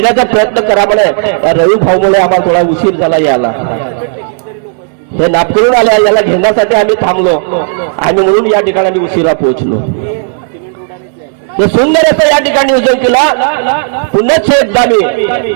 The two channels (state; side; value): silent; left; digital silence